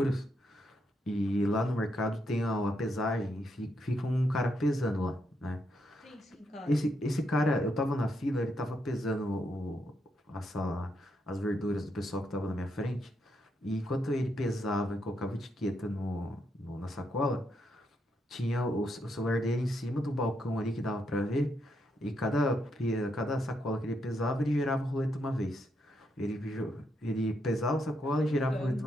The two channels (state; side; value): normal; both; correlation 0.79